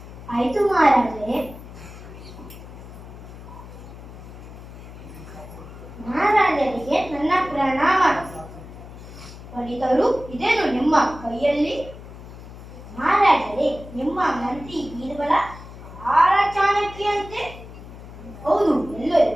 ಆಯ್ತು ಮಹಾರಾಜರೇ. ಮಹಾರಾಜರಿಗೆ ನನ್ನ ಪ್ರಣಾಮ. ಪಂಡಿತರು, ಇದೇನು ನಿಮ್ಮ ಕೈಯಲ್ಲಿ? ಮಹಾರಾಜರೇ, ನಿಮ್ಮ ಮಂತ್ರಿ ಬೀರ್ಬಲ ಬಹಳ ಚಾಣಕ್ಯಂತೆ. ಹೌದು,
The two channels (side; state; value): left; noise; hum, 15 dB below the sound